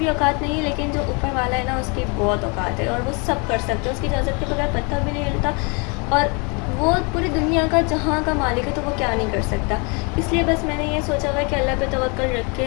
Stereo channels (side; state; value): right; quieter; 32.3 dB